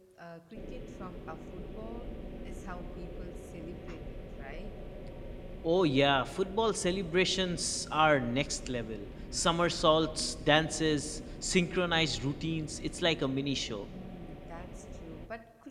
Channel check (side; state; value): both; identical; correlation 1.00